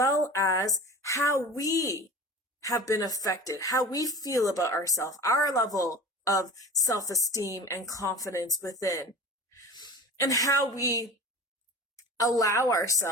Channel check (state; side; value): normal; both; correlation 0.36